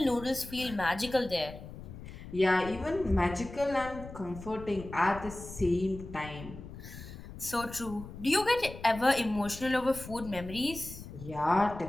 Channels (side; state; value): left; noise; rumble, 13 dB below the sound